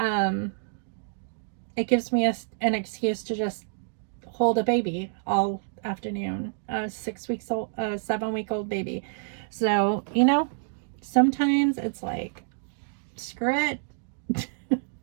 gives me an excuse to just hold a baby all afternoon, a 7-week-old baby. So, you know, sometimes it's like, screw it.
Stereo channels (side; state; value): left; silent; digital silence